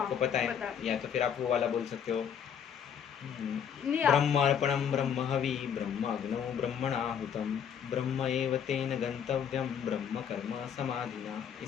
पता है, या तो फिर आप वो वाला बोल सकते हो, ब्रह्मार्पणम ब्रह्म हवि ब्रह्म अग्नौ ब्रह्मणाहुतम ब्रह्म एव तेन गंतव्यम ब्रह्म कर्म समाधिना।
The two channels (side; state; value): right; quieter; 8.1 dB